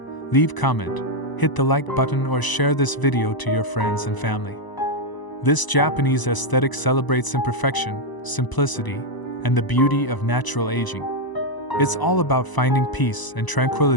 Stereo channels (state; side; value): late; right; 1.0 ms